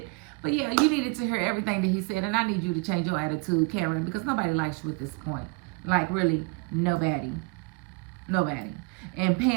But yeah, you needed to hear everything that he said. And I need you to change your attitude, Karen, because nobody likes you at this point. Like, really, nobody. Nobody. And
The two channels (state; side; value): quieter; left; 29.7 dB